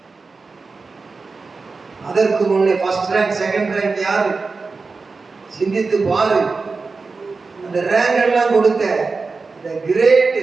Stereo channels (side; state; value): left; quieter; 4.2 dB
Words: அதற்கு முன்னே ஃபர்ஸ்ட் ரேங்க், செகண்ட் ரேங்க் யாரு? சிந்தித்து பாரு. அந்த ரேங்க் எல்லாம் கொடுத்த the great